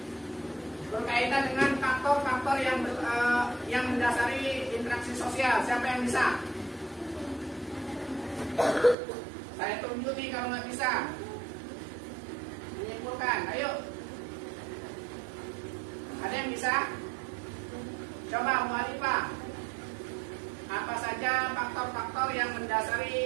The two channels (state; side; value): drops out; left; at 9.0 s